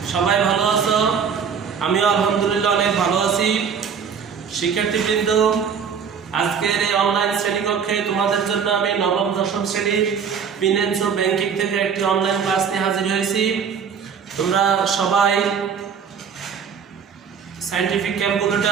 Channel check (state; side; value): quieter; left; 6.8 dB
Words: সবাই ভালো আছো। আমিও আলহামদুলিল্লাহ অনেক ভালো আছি। শিক্ষার্থীবৃন্দ, আজকের এই অনলাইন শ্রেণীকক্ষে তোমাদের জন্য আমি নবম দশম শ্রেণীর ফিন্যান্স ও ব্যাংকিং থেকে একটি অনলাইন ক্লাস নিয়ে হাজির হয়েছি। তোমরা সবাই সায়েন্টিফিক